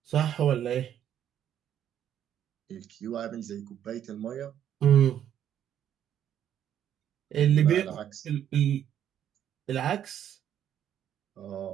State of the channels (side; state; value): left; quieter; 10.1 dB